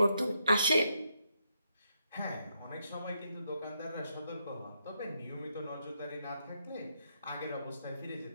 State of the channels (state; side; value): inverted; both; correlation -0.80